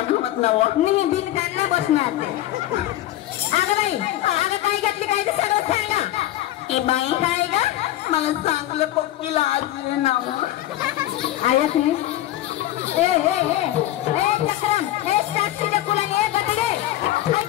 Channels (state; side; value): quieter; right; 14.5 dB